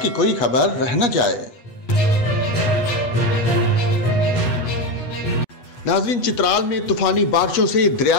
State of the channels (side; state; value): right; late; 8.1 ms